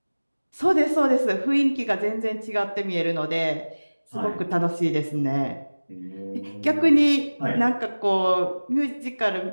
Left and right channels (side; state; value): both; inverted; correlation -1.00